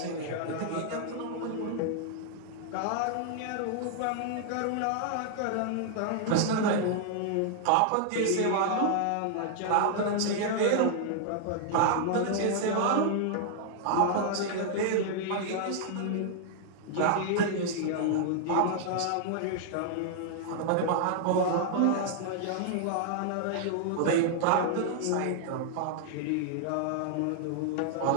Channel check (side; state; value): both; different; correlation -0.01